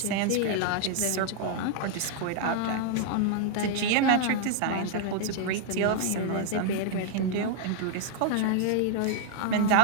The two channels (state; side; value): different; both; correlation -0.01